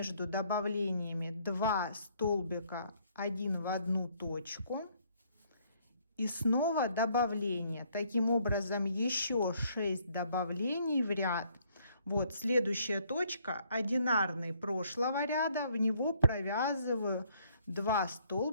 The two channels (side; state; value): both; inverted; correlation -0.66